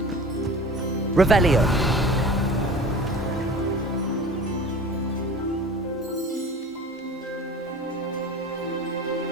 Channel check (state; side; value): normal; both; correlation 0.39